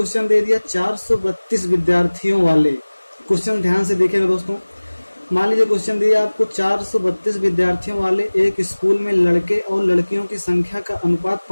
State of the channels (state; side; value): inverted; both; correlation -1.00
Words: दे दिया 432 विद्यार्थियों वाले। क्वेश्चन ध्यान से देखिएगा दोस्तों। मान लीजिए क्वेश्चन दिया आपको 432 विद्यार्थियों वाले एक स्कूल में लड़के और लड़कियों की संख्या का अनुपात